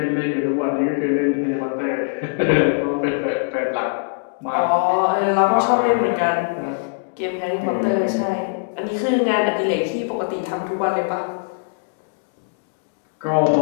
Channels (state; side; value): silent; right; 65 dB below the other